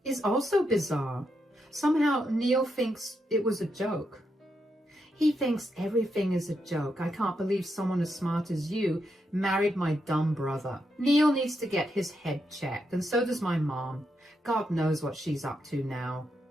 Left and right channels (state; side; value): normal; both; correlation 0.82